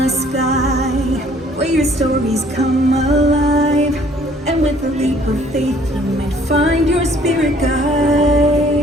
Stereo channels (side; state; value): both; normal; correlation 0.58